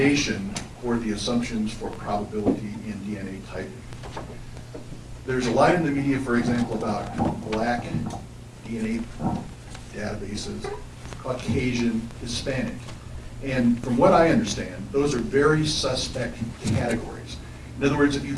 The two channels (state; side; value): identical; both; correlation 1.00